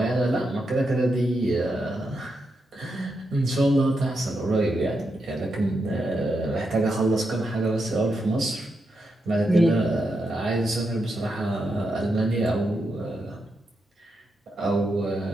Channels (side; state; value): both; normal; correlation 0.84